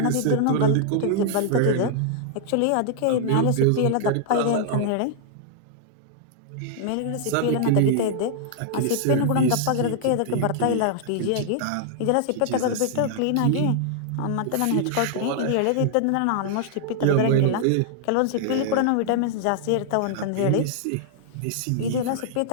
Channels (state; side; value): different; both; correlation -0.01